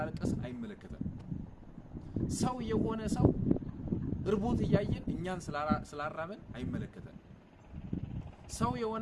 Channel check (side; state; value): both; identical; correlation 1.00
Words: አይመለከተን ሰው የሆነ ሰው እርቦት ያያየን እኛን ስላራበን አይመለከተን ሰው